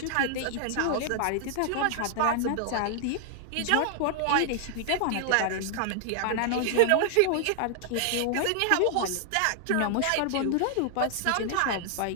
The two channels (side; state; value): both; different; correlation 0.00